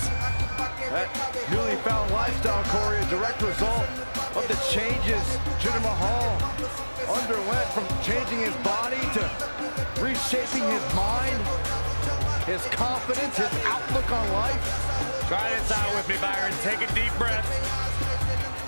That newly found lifestyle, Corey, a direct result of the changes Jinder Mahal underwent, from changing his body to reshaping his mind, his confidence, his outlook on life. Try this out with me, Byron. Take a deep breath.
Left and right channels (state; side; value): inverted; both; correlation -1.00